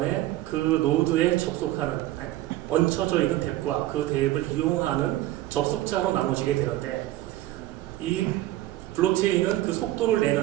그 노드에 접속하는, 얹혀져 있는 덱과 그 덱을 이용하는 접속자로 나눠지게 되는데, 이 블록체인은 그 속도를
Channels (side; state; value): left; quieter; 15.7 dB